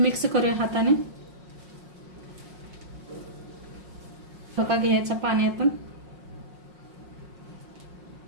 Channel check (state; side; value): late; left; 5.5 ms